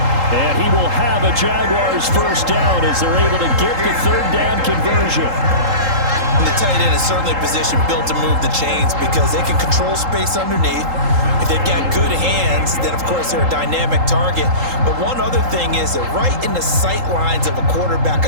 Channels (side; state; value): left; late; 3.8 ms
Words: And he will have a Jaguars 1st down as they're able to get the 3rd down conversion. And the tight end is certainly a position built to move the chains because they can control space underneath. If they've got good hands, then of course they're a dynamic target. But one other thing is they're right in the sight lines of a quarterback